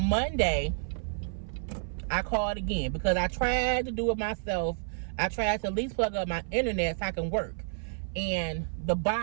Monday, I called again because I tried to do it myself. I tried to at least plug up my internet so I can work. And the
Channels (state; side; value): silent; left; 55 dB below the other